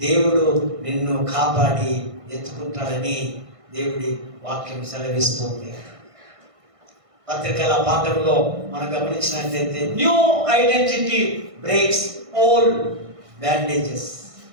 నిన్ను కాపాడి ఎత్తుకుంటాడని దేవుడి వాక్యం సెలవిస్తుంది. పత్రికల పాఠంలో మనం గమనించినట్లయితే, new identity breaks old bandages.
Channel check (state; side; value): late; left; 1.5 ms